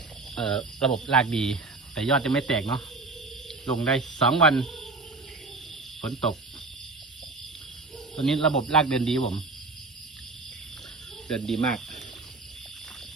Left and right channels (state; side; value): quieter; left; 3.6 dB